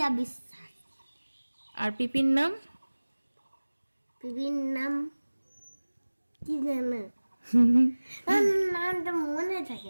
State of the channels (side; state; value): both; inverted; correlation -1.00